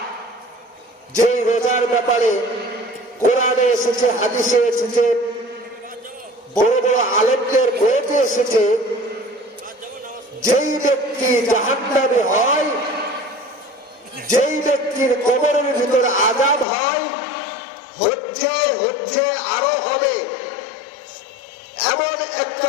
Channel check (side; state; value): right; drops out; at 16.7 s